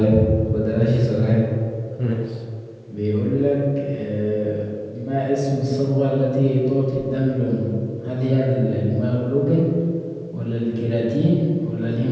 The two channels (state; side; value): identical; both; correlation 1.00